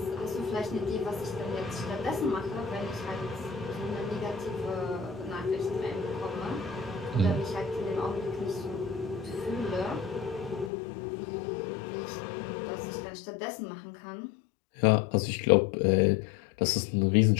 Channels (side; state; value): right; drops out; at 10.7 s